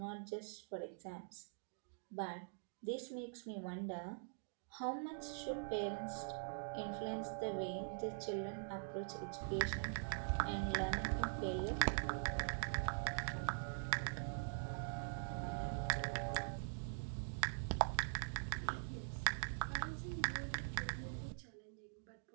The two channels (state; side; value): silent; left; digital silence